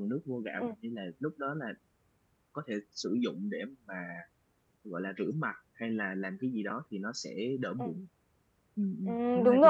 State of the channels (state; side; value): identical; both; correlation 1.00